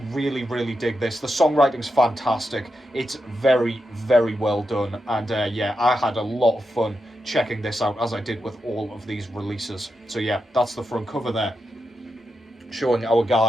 really, really dig this. The songwriting's fantastic. It's very, very well done. And yeah, I had a lot of fun checking this out, as I did with all of these releases. So yeah, that's the front cover there. Showing our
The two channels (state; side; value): normal; both; correlation 0.87